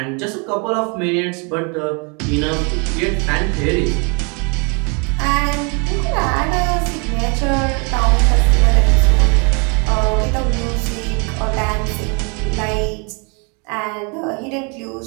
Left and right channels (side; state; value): left; quieter; 34.2 dB